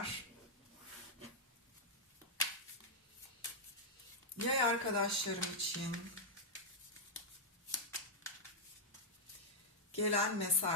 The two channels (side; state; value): both; normal; correlation -0.06